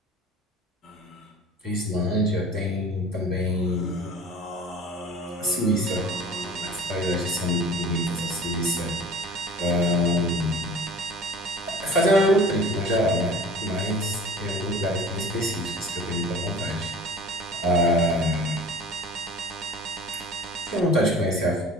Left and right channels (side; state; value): both; normal; correlation 0.42